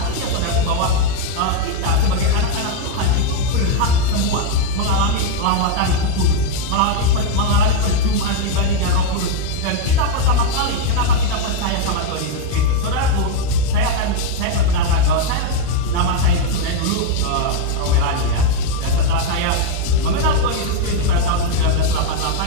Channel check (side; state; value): both; different; correlation 0.01